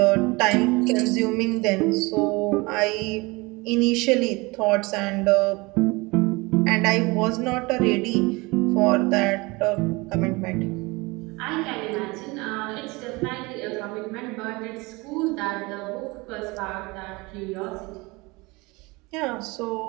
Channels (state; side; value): quieter; left; 24.6 dB